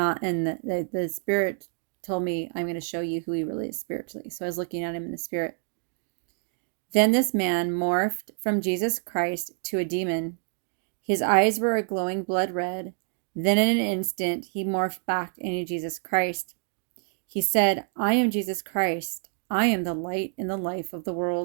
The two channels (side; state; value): left; silent; 60 dB below the other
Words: in the Spirit told me, "I'm going to show you who he really is spiritually." So I was looking at him in the Spirit. Then this man morphed from Jesus Christ to a demon. His eyes were a glowing blood red. Then in an instant, he morphed back into Jesus Christ. He said, "I am Jesus Christ. I am the light and the life of the